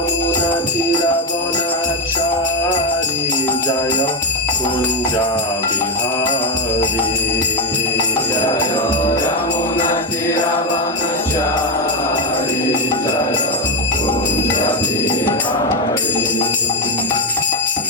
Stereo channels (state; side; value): normal; both; correlation 0.06